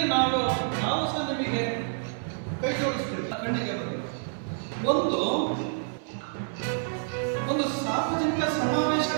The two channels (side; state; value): left; silent; 59 dB below the other